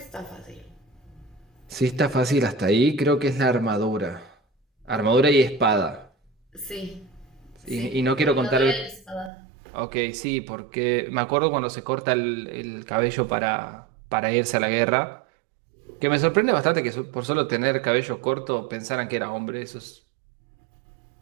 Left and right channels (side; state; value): left; drops out; at 9.3 s